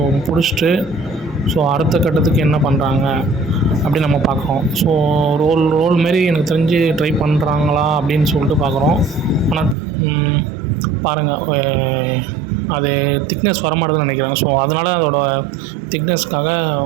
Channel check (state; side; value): drops out; left; at 9.8 s